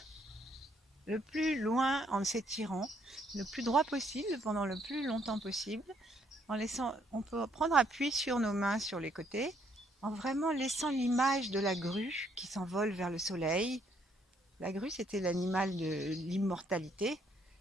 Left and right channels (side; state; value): both; normal; correlation 0.69